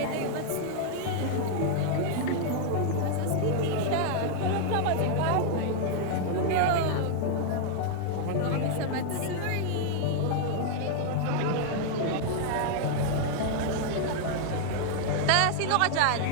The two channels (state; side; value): different; both; correlation 0.00